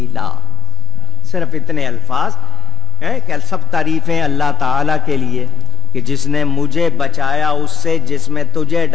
صرف اتنے الفاظ ہیں کہ سب تعریفیں اللہ تعالیٰ کے لیے کہ جس نے مجھے بچایا اس سے جس میں تجھے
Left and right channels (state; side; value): normal; both; correlation 0.51